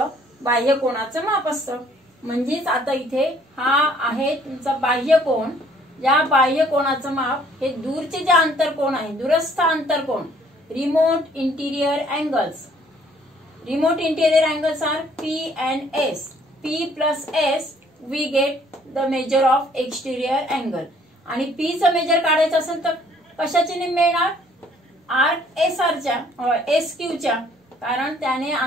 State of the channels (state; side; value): normal; both; correlation 0.60